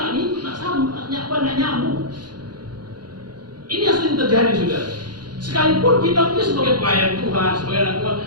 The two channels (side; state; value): left; late; 0.70 ms